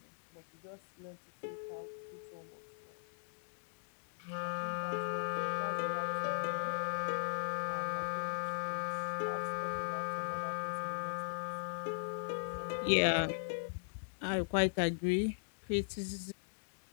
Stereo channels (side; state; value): right; silent; digital silence